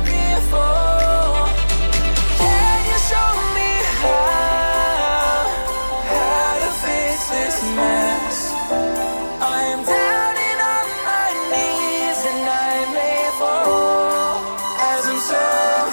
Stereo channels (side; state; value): both; inverted; correlation -1.00